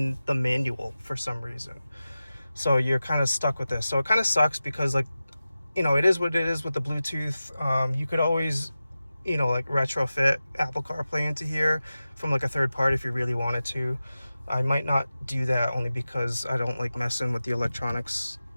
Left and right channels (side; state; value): both; inverted; correlation -0.94